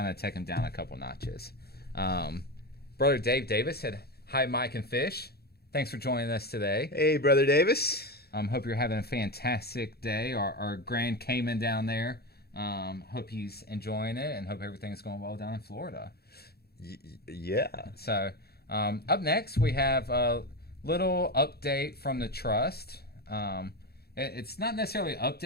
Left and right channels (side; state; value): right; late; 0.46 ms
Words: to take him down a couple notches. Brother Dave Davis said, "Hi, Mike and Fish. Thanks for joining us today." Hey, Brother Davis. Hope you're having a fantastic day. Our Grand Cayman down there. Hope he's enjoying it and hope everything's going well down in Florida. Yeah. So up next, we have a little update from the Trust. It's not necessarily an